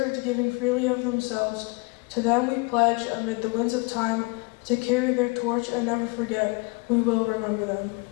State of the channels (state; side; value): quieter; right; 28.8 dB